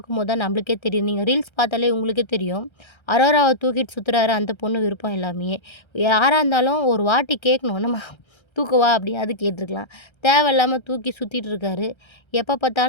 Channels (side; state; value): right; late; 1.3 ms